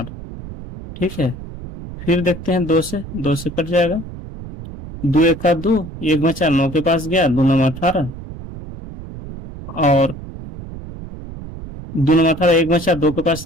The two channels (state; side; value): noise; right; rumble, 12 dB below the sound